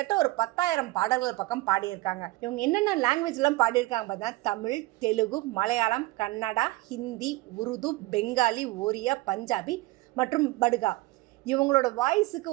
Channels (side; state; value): left; quieter; 20.0 dB